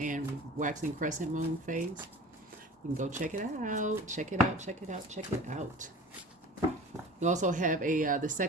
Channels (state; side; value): normal; both; correlation 0.40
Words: waxing crescent moon phase. You can go check it out. We also have the